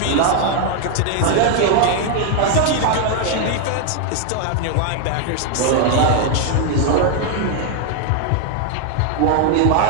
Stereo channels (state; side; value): different; both; correlation 0.00